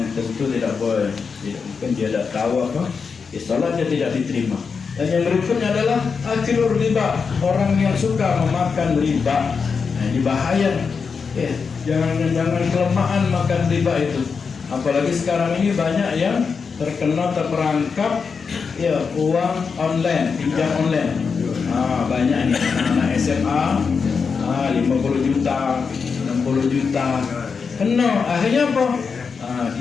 tentu tidak boleh. Mungkin dia tidak tahu apa, sholatnya tidak diterima. Dan yang berikutnya adalah akilur riba, orang yang suka memakan riba. Nah, ini bahaya. Jangan kelemahan makan riba itu. Apalagi sekarang ini banyak yang terperangkap uang online, pinjam online. Banyak nih anak SMA 50 juta, 60 juta. Kena akhirnya apa?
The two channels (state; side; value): quieter; right; 5.5 dB